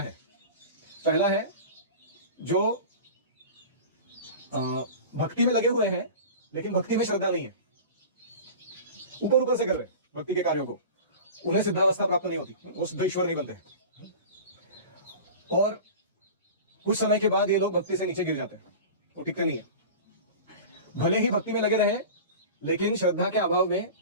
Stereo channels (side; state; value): both; inverted; correlation -0.34